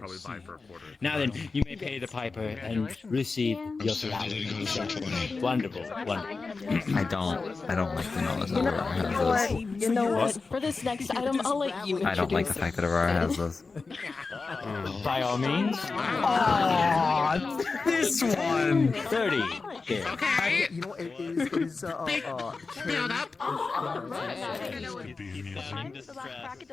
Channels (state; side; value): quieter; right; 4.2 dB